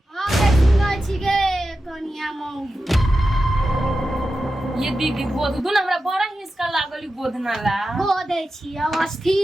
हां के सुनै छी गे कनिया मौगी ये दीदी गोद दू ना हमरा बड़ा हिसका लागल गोदना ला गोदै छी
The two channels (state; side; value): normal; both; correlation 0.92